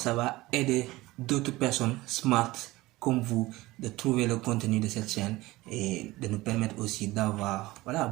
va aider d'autres personnes smart comme vous de trouver le contenu de cette chaîne et de nous permettre aussi d'avoir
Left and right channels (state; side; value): quieter; left; 19.2 dB